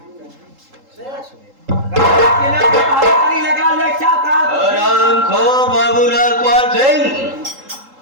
आराम खो बाबू नागपाल सिंह,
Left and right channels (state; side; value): late; left; 3.8 ms